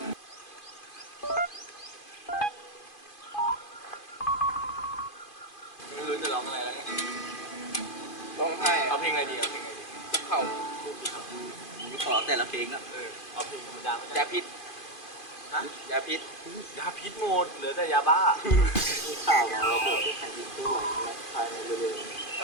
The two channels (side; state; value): right; late; 2.5 ms